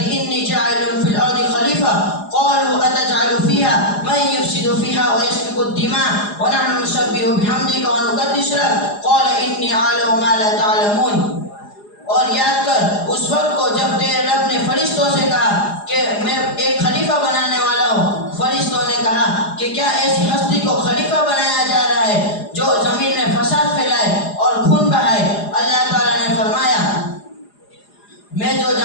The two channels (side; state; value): right; late; 4.9 ms